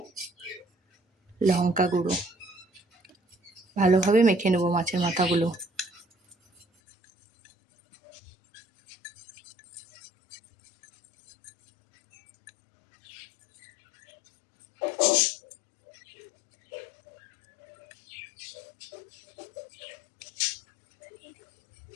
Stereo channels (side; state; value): right; drops out; at 6.7 s